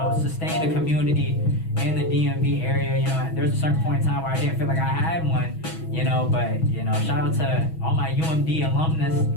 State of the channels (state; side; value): late; right; 6.2 ms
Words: sustained a community in the DMV area. You know, there's a certain point in time where I didn't feel like I had one, you know, but, you know, shout out to all my UMD alumnus